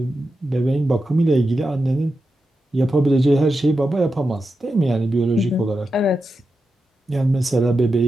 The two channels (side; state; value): both; normal; correlation 0.89